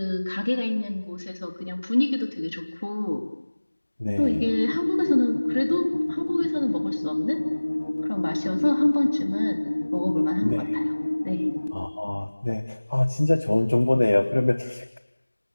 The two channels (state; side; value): inverted; both; correlation -1.00